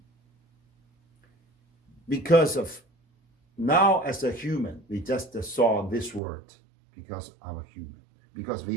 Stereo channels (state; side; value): drops out; left; at 6.2 s